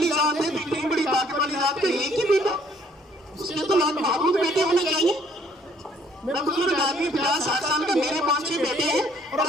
ذات ہے تو اتنی بڑی طاقت والی ذات کا ایک ہی بیٹا, اس کے تو لاکھ محبوب بیٹے ہونے چاہیے. میرا بزرگ آدمی 50-60 سال کا, میرے 5-6 بیٹے ہیں اور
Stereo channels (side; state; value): both; normal; correlation 0.62